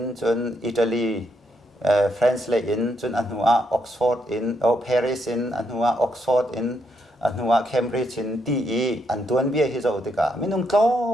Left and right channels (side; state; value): both; normal; correlation 0.77